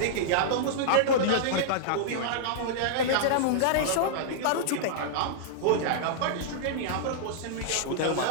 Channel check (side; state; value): both; different; correlation -0.02